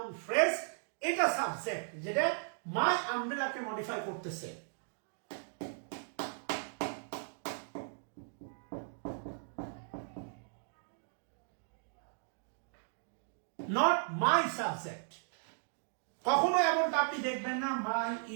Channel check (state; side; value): silent; left; digital silence